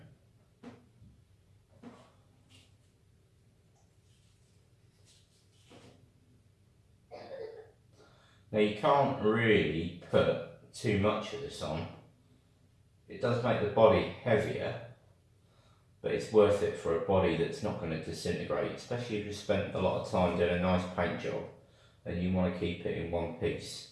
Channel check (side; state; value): both; identical; correlation 1.00